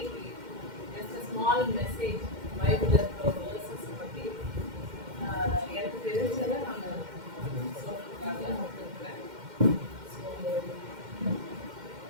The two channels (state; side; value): late; left; 2.1 ms